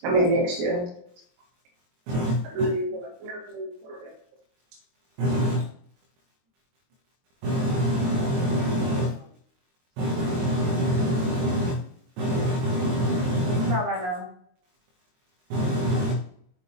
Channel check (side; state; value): left; late; 23 ms